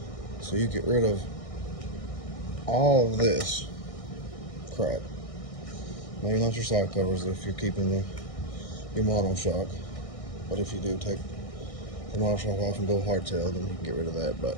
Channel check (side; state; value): right; late; 1.6 ms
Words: So you get rid of all of this crap. Maybe not your side covers if you're keeping your monoshock, but if you do take the monoshock off and go hardtail, then you can get rid of that.